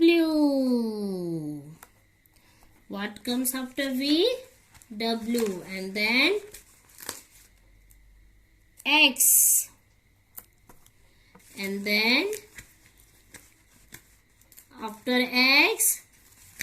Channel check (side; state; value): both; identical; correlation 1.00